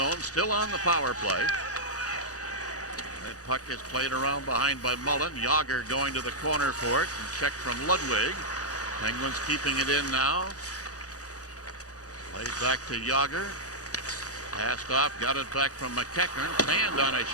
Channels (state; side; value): late; right; 0.67 ms